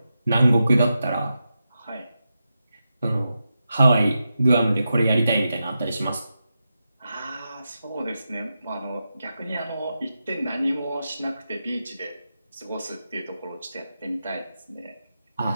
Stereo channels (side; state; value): both; inverted; correlation -0.89